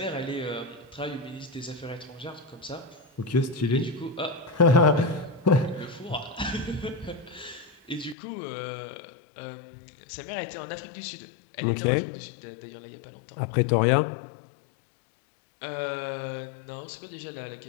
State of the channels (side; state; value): right; drops out; at 8.2 s